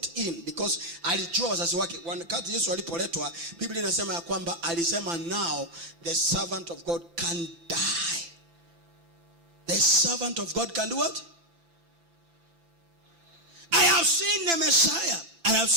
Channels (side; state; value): left; late; 5.9 ms